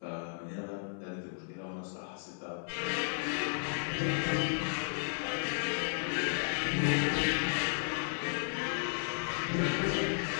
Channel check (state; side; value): silent; right; 55 dB below the other